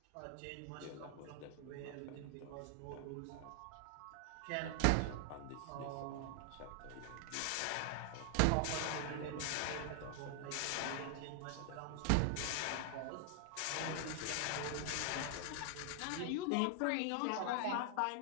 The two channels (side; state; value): both; different; correlation 0.00